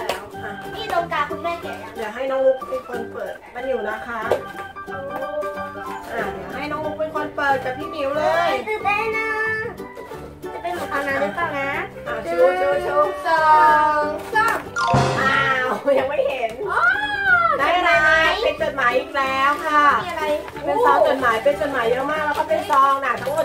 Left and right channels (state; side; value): identical; both; correlation 1.00